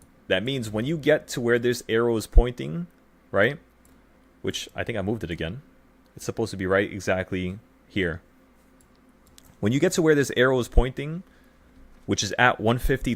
That means when you get to where this arrow is pointing, right? Which I think I moved it again. It's supposed to be right exactly here. When you get to where this arrow is pointing, which is at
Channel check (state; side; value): identical; both; correlation 1.00